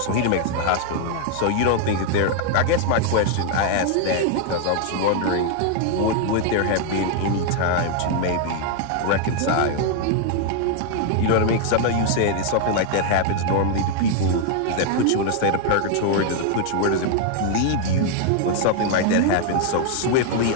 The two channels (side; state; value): both; different; correlation 0.00